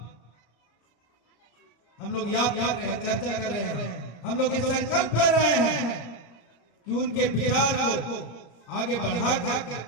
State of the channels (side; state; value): right; late; 34 ms